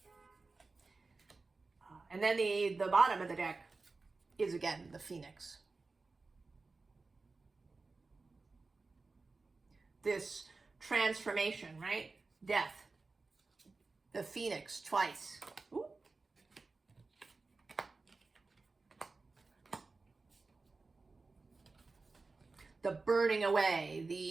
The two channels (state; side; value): quieter; left; 3.8 dB